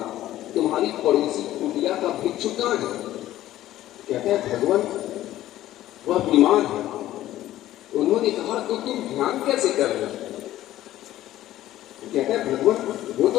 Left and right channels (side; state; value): right; quieter; 14.1 dB